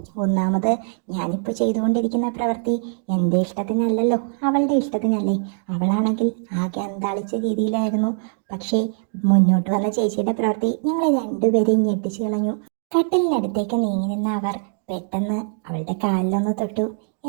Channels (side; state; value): left; silent; 63 dB below the other